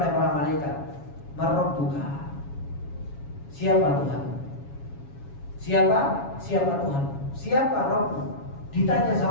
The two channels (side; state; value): right; late; 7.2 ms